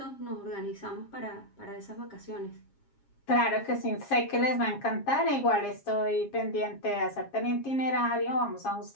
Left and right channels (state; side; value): late; right; 7.3 ms